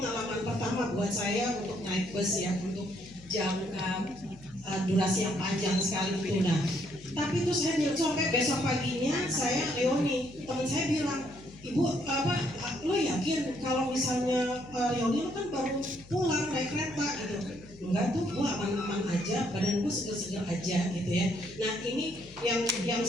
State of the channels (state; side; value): noise; left; hum, 21 dB below the sound